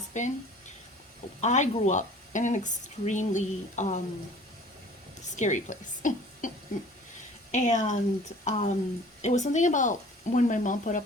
been. I grew up in an extremely scary place. And it was something about when my mom put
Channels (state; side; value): normal; both; correlation 0.48